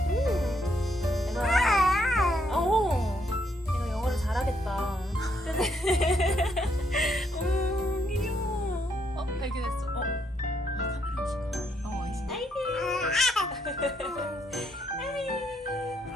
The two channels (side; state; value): both; normal; correlation 0.74